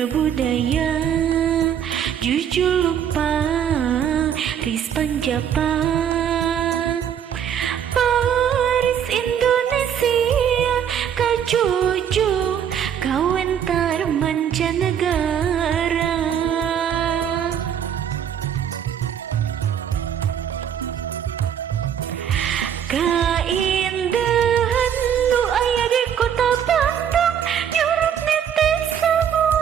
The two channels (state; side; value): quieter; left; 8.8 dB